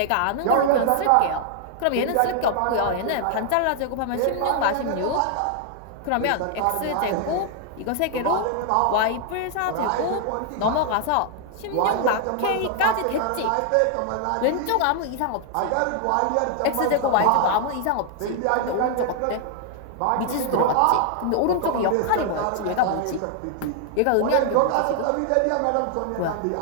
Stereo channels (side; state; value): both; different; correlation -0.01